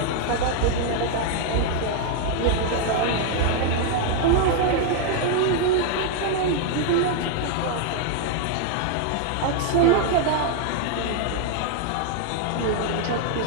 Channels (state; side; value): different; both; correlation 0.00